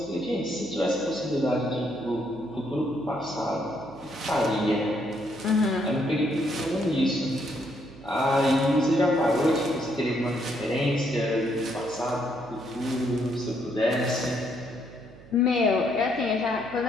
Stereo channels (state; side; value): noise; right; hum, 20 dB below the sound